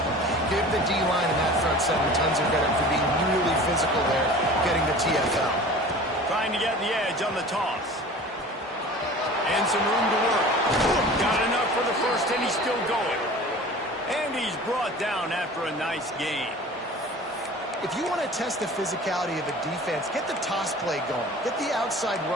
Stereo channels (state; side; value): normal; both; correlation 0.41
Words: him. Give the D-line and that front seven tons of credit for being really physical there, getting the TFL. Trying to get the edge on the toss. And some room to work. Got enough for the first, and he's still going. And he's brought down after a nice game. If you want to test the physicality of a defense, get the toss play going. Get the outside